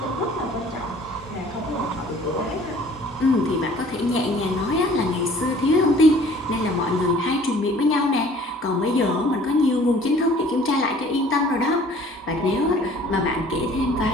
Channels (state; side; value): normal; both; correlation 0.52